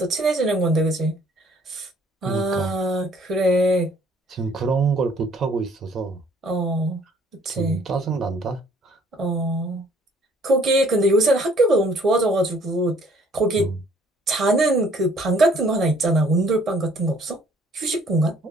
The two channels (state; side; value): normal; both; correlation 0.60